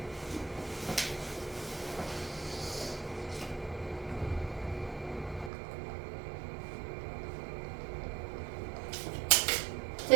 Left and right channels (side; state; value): left; drops out; at 5.5 s